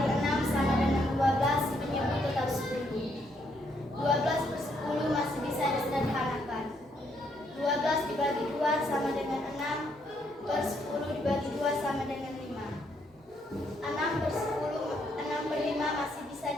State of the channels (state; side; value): normal; both; correlation 0.73